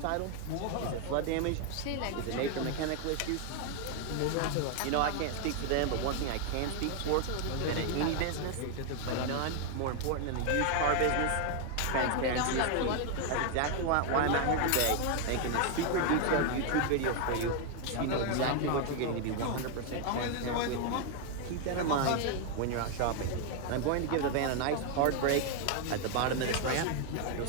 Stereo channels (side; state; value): both; different; correlation 0.00